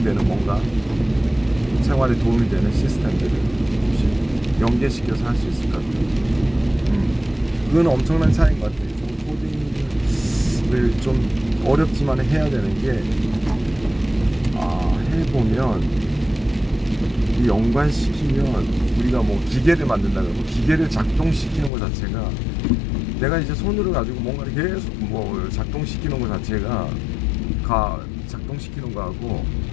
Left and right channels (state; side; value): drops out; right; at 21.7 s